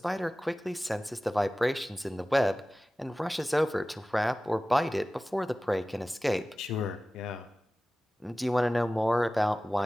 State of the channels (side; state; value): both; normal; correlation 0.97